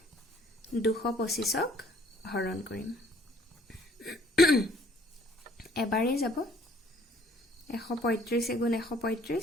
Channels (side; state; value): both; normal; correlation 0.59